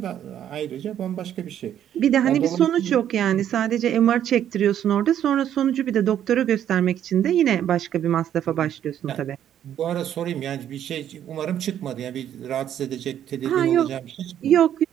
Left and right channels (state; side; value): quieter; left; 10.4 dB